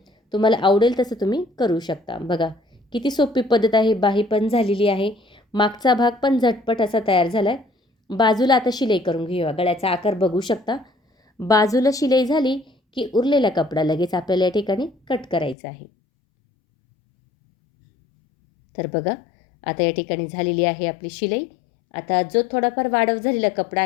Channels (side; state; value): right; drops out; at 15.6 s